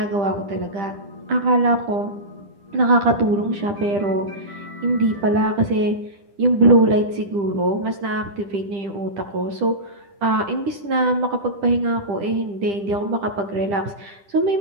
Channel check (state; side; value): late; left; 10 ms